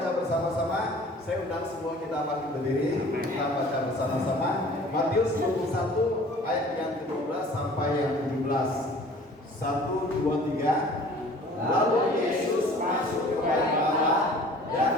bersama-sama. Saya undang semua kita akan berdiri. Kita baca bersama-sama Matius 21 ayat yang ke-12 sampai yang ke-17. 1, 2, 3. Lalu Yesus masuk ke bait Allah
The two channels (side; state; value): both; normal; correlation 0.48